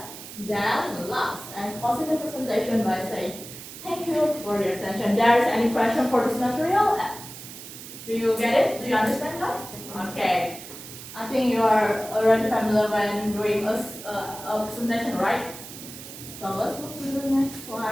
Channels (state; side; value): noise; right; hiss, 13 dB below the sound